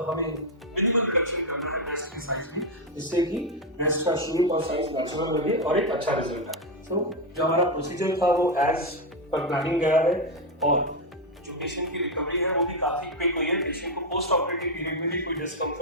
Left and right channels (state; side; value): normal; both; correlation 0.05